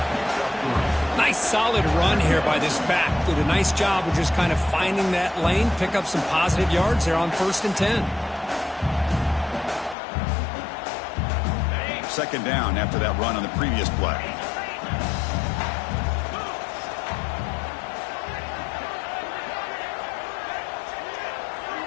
Nice solid run here by this back. Did a nice job of just kind of finding that lane, pick up some positive yards there on 1st and 10. Second down after that run on the previous play.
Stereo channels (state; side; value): drops out; right; at 10.0 s